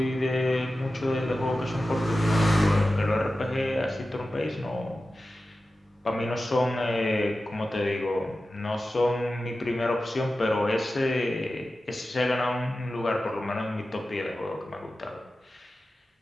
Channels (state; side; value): normal; both; correlation 0.94